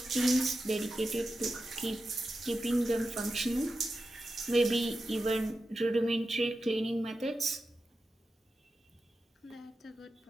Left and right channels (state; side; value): normal; both; correlation 0.91